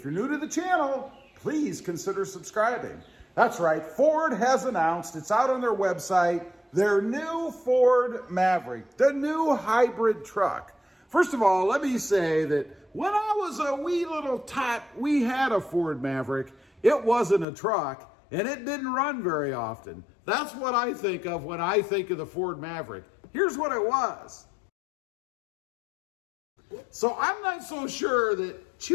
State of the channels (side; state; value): right; drops out; at 17.4 s